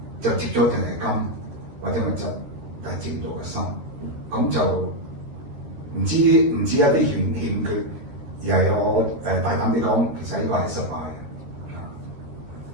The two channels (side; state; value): left; late; 13 ms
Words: 就接咗淨係金或者物質，但係接唔到個心，咁就唔知一啲欠缺，而係我大膽啲講，其實呢個係失敗。